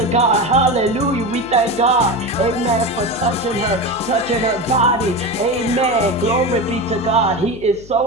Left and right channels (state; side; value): noise; left; hum, 19 dB below the sound